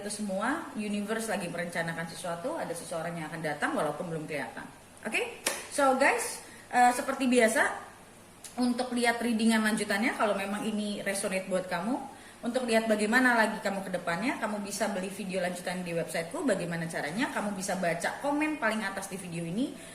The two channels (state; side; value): identical; both; correlation 1.00